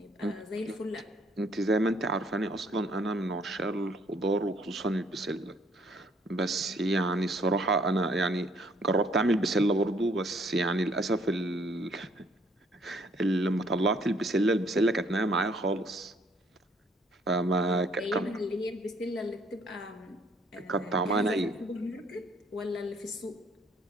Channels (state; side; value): normal; both; correlation 0.63